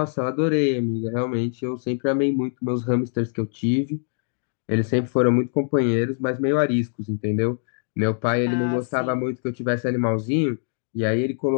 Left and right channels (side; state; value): right; silent; digital silence